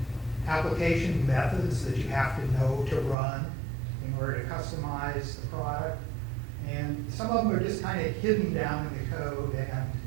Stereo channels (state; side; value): drops out; left; at 3.2 s